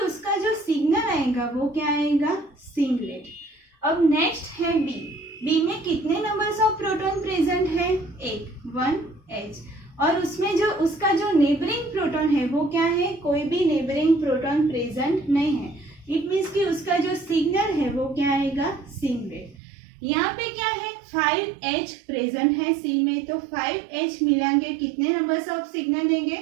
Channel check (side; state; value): left; drops out; at 19.6 s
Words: उसका जो सिग्नल आएगा वो क्या आएगा, सिंगलेट। अब नेक्स्ट है B में कितने नंबर्स ऑफ प्रोटॉन प्रेजेंट है, 1H, और उसमें जो उसका जो नेबरिंग प्रोटॉन है वो क्या है, कोई भी नेबरिंग प्रोटॉन प्रेजेंट नहीं है। इट मीन्स कि उसका जो सिग्नल है वो क्या आएगा, सिंगलेट। यहाँ पे क्या है, 5H प्रेजेंट है C में, तो 5H मिलाएंगे कितने नंबर्स ऑफ सिग्नल देंगे,